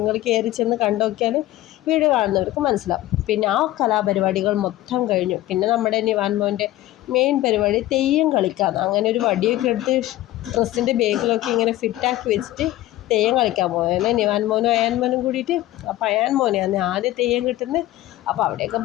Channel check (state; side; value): quieter; right; 15.6 dB